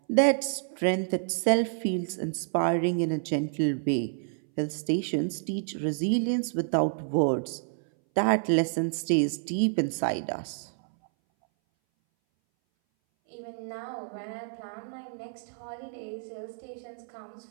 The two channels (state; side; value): silent; left; 59 dB below the other